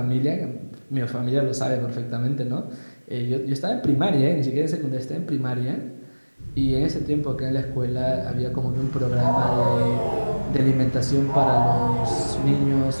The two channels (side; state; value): both; inverted; correlation -1.00